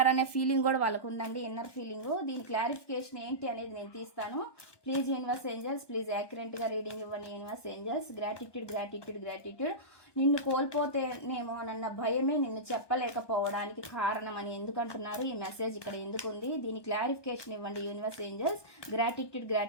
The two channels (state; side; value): late; right; 1.2 ms